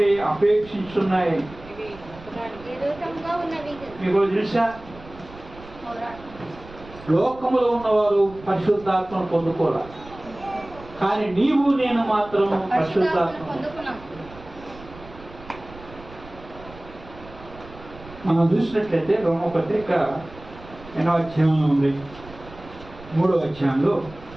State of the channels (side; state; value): right; noise; rumble, 19 dB below the sound